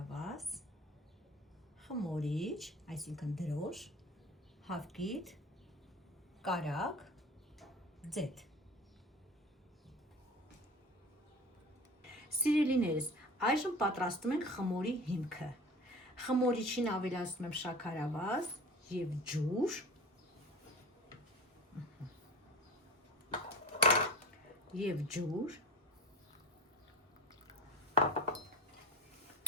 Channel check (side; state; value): both; normal; correlation 0.35